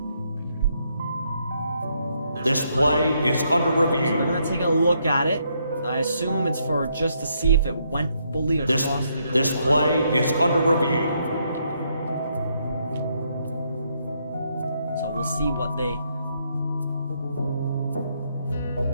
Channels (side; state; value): both; inverted; correlation -0.75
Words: This play is under review. So we're gonna take a look at it. I assume it's for just to see if it went fully across the goal. This play is under review. So we'll see what they